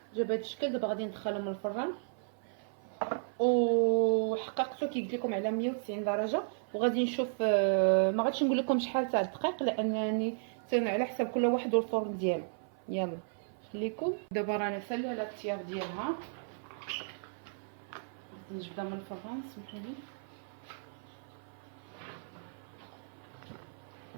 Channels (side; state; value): left; silent; 55 dB below the other